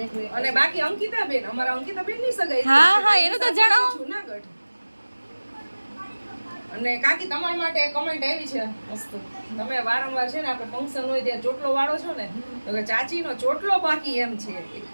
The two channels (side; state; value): both; inverted; correlation -1.00